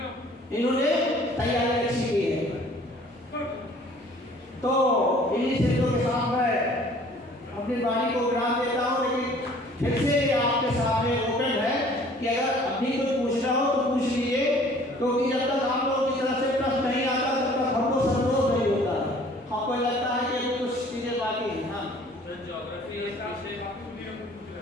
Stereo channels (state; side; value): normal; both; correlation 0.53